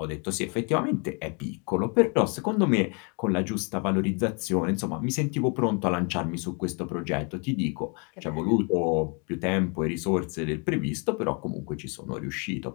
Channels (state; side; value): quieter; right; 34.8 dB